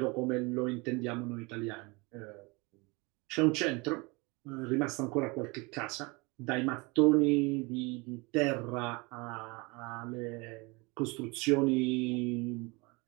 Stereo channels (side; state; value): left; quieter; 26.7 dB